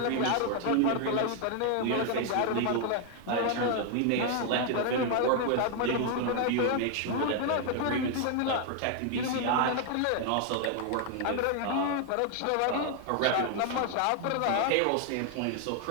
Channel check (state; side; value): different; both; correlation 0.00